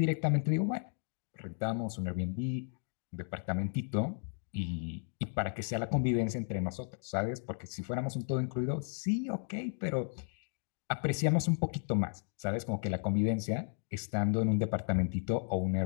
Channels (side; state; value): right; silent; 55 dB below the other